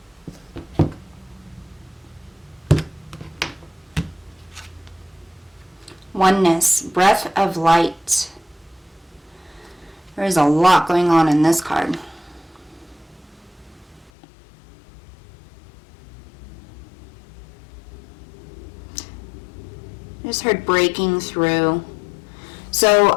Oneness, breath of light. There is a lot going on in this card. I just heard breaking through.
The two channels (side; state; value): right; drops out; at 14.1 s